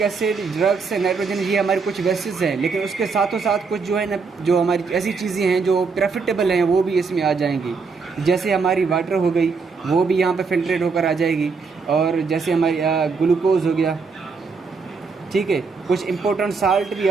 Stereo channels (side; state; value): left; quieter; 4.9 dB